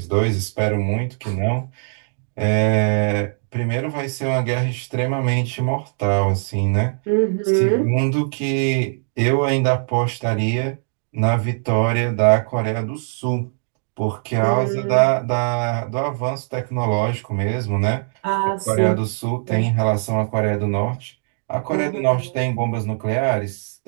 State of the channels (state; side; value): silent; left; digital silence